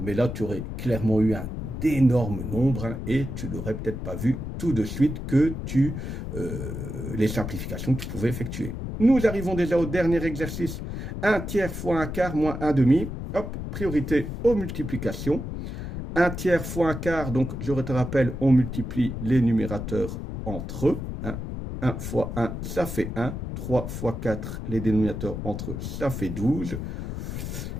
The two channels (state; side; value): noise; left; rumble, 6 dB below the sound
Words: là, tu aurais clairement eu un d'énormes nombres et tu n'aurais peut-être pas vu tout de suite que les simplifications que tu pouvais effectuer. Nous arrivons déjà au dernier exercice. 1 tiers fois 1 quart moins 1 demi. Hop, priorité aux multiplications. 1 tiers fois 1 quart, donc je te rappelle, on multiplie les numérateurs entre eux. 1 fois 1, ça fait 1. 3 fois 4, les dénominateurs entre eux, ça fait 12.